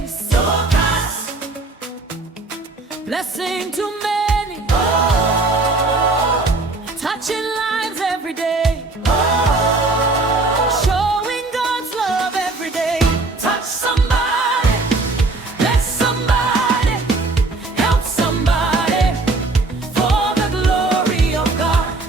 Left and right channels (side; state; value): left; quieter; 3.4 dB